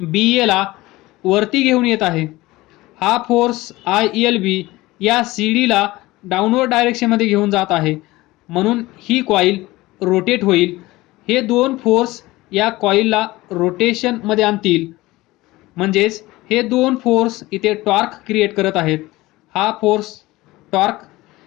BA ला वरती घेऊन येत आहे, हा फोर्स ILB या CD ला डाऊनवर्ड डायरेक्शनमध्ये घेऊन जात आहे, म्हणून ही कॉईल रोटेट होईल. हे दोन फोर्स या कॉईलला रोटेशनमध्ये आणतील, म्हणजेच हे दोन फोर्स इथे टॉर्क क्रिएट करत आहेत. हा फोर्स टॉर्क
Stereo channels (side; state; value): right; quieter; 19.3 dB